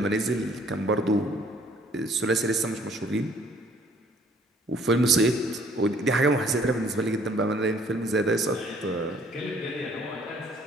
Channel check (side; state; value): both; normal; correlation 0.60